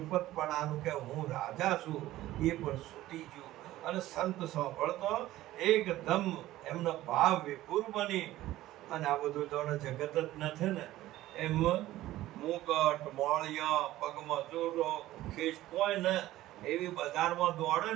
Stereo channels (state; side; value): quieter; left; 15.5 dB